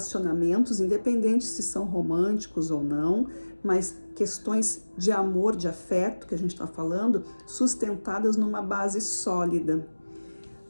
independente se são românticos ou não, mas questões de amor, de afeto, que a gente está falando, sustentadas numa base sólida.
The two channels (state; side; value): inverted; both; correlation -1.00